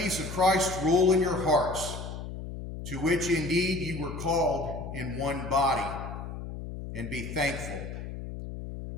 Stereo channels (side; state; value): left; noise; hum, 8 dB below the sound